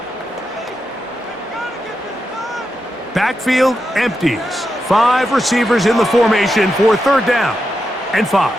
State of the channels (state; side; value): normal; both; correlation 0.87